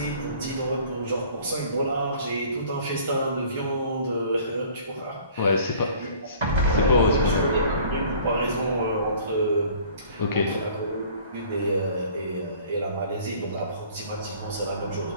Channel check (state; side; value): inverted; both; correlation -0.51